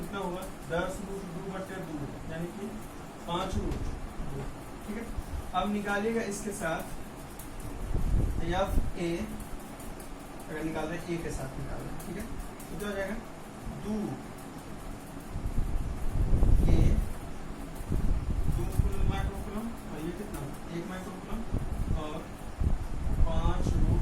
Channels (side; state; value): both; identical; correlation 1.00